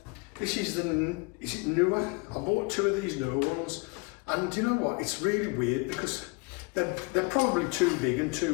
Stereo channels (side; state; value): right; quieter; 28.8 dB